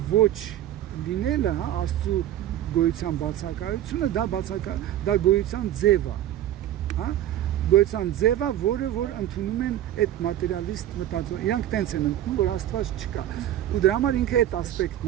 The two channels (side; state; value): left; quieter; 12.2 dB